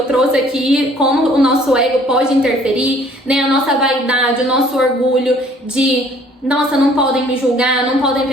trouxe aqui como o nosso ego pode interferir, né? A nossa vaidade, o nosso orgulho de, nossa, não podem me julgar, não podem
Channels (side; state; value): both; normal; correlation 0.57